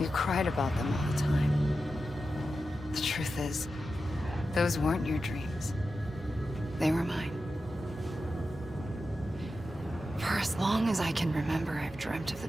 cried about them all the time. The truth is, those weren't your dreams. They were mine. For as long as I can remember, I've dreamt of the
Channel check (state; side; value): normal; both; correlation 0.91